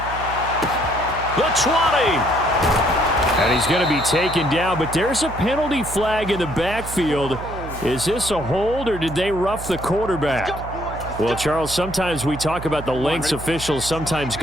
The 20. And he's going to be taken down, but there's a penalty flag in the backfield. Is this a hold, or did they rough the quarterback? Well, Charles, sometimes we talk about the lengths officials sometimes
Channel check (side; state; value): right; noise; hum, 10 dB below the sound